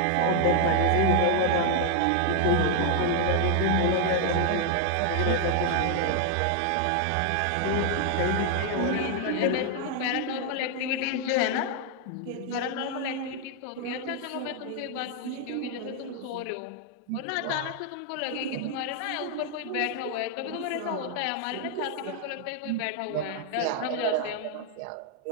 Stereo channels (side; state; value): both; different; correlation 0.00